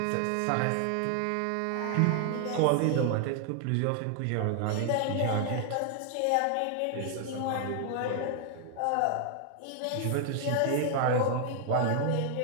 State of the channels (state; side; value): different; both; correlation 0.00